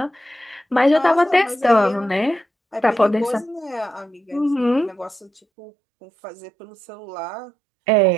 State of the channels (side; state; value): left; drops out; at 5.4 s